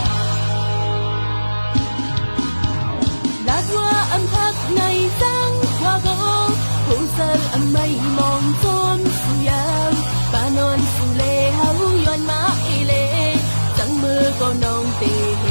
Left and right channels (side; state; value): both; inverted; correlation -1.00